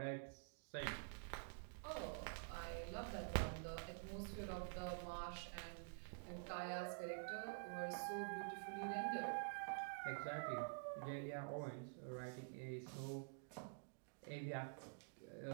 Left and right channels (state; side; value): silent; left; digital silence